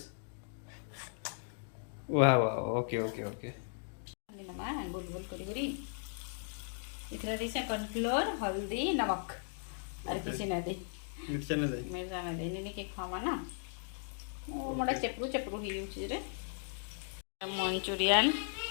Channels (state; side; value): silent; right; digital silence